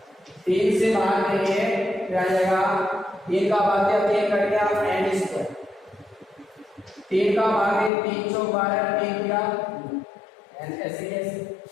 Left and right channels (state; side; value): drops out; right; at 7.9 s